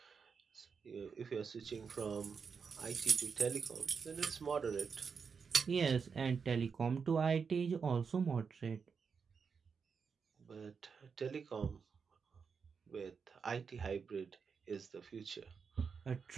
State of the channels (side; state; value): left; quieter; 5.8 dB